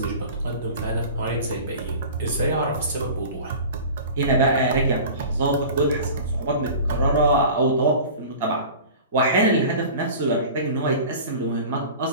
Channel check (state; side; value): inverted; both; correlation -0.38